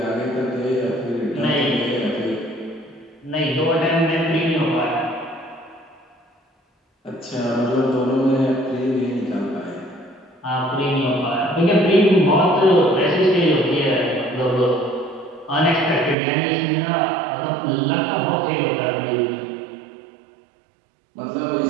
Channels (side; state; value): left; drops out; at 16.2 s